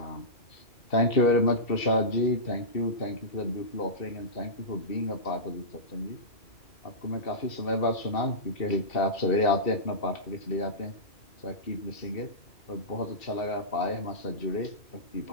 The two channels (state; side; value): late; right; 2.7 ms